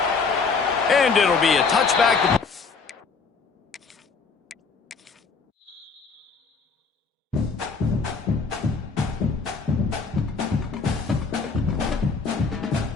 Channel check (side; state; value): right; quieter; 4.8 dB